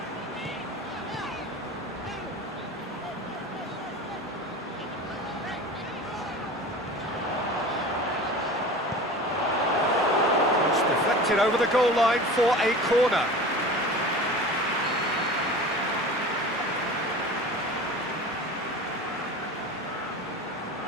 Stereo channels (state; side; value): normal; both; correlation 0.36